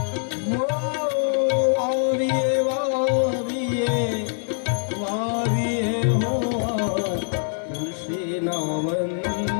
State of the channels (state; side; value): silent; right; 57 dB below the other